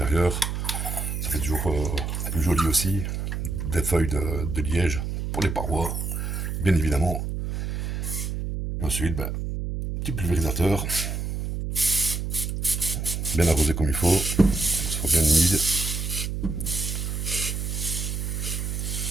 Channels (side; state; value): right; noise; hum, 3 dB below the sound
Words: Ça fait toujours plus joli aussi. Des feuilles de liège pour les parois, bien évidemment. Et ensuite, ben, petit pulvérisateur. Bien arrosé comme il faut. Ça soit bien humide.